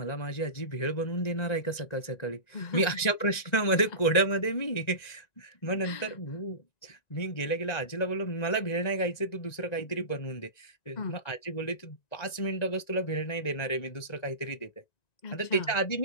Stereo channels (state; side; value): late; right; 1.9 ms